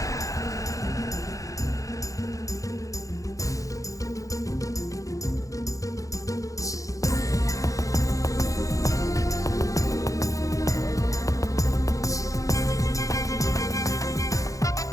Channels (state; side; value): late; right; 0.16 ms